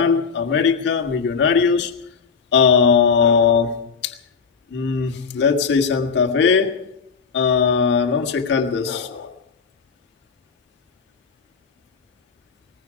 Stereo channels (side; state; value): right; quieter; 5.7 dB